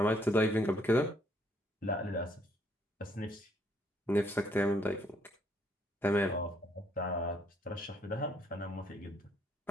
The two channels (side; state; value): both; normal; correlation 0.68